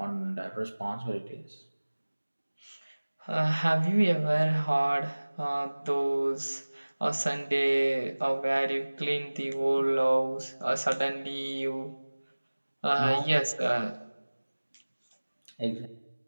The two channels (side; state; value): both; inverted; correlation -1.00